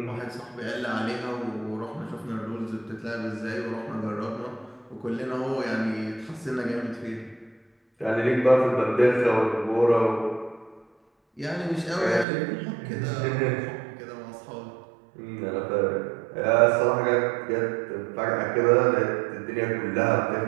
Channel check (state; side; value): drops out; left; at 12.2 s